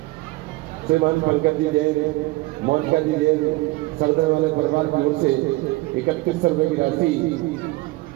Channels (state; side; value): quieter; left; 21.3 dB